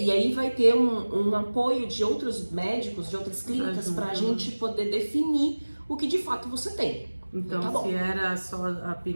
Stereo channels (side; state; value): both; inverted; correlation -1.00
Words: aí vai ter um apoio de outros médicos, de outras clínicas, para a gente poder definir o que de fato você tem. Então, tá bom. se era só a